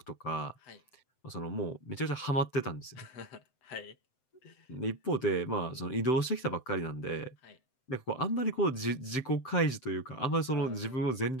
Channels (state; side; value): late; right; 7.7 ms